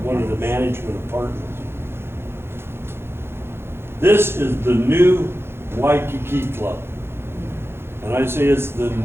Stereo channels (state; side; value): late; left; 0.12 ms